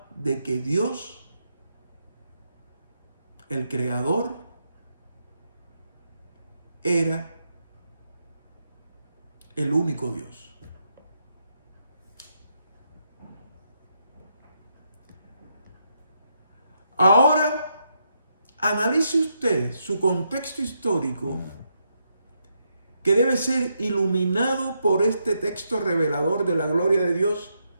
de que Dios, el Creador, era el único Dios. Ahora, analice usted su contexto histórico, que debe ser iluminado por este texto revelador de la gloria de Dios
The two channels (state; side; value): inverted; both; correlation -0.80